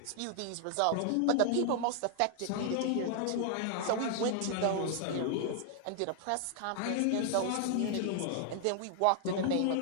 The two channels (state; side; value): different; both; correlation 0.00